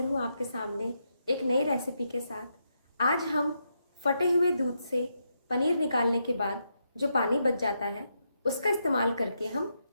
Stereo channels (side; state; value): both; inverted; correlation -0.82